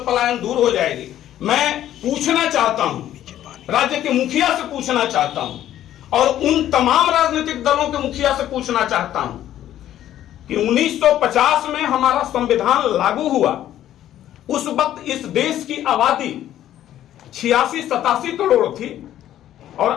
पलायन दूर हो जाएगी। मैं पूछना चाहता हूं, राज्य के मुखिया से पूछना चाहता हूं और उन तमाम राजनीतिक दलों के मुखिया से पूछना चाहता हूं कि 1950 में हमारा संविधान लागू हुआ, उस वक्त इस देश की आबादी 86-87 करोड़ थी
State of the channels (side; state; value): right; quieter; 12.2 dB